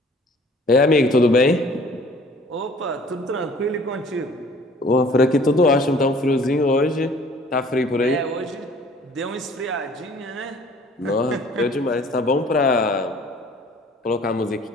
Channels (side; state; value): both; normal; correlation 0.53